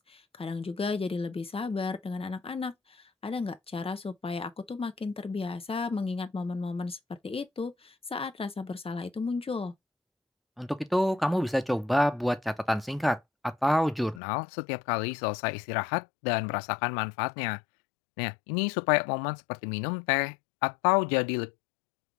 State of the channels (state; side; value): drops out; right; at 14.2 s